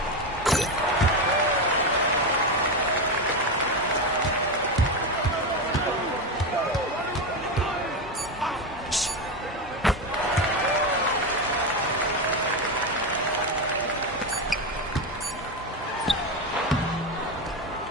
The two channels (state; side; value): normal; both; correlation 0.14